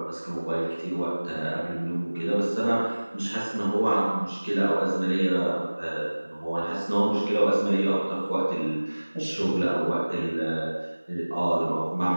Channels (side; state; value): both; inverted; correlation -1.00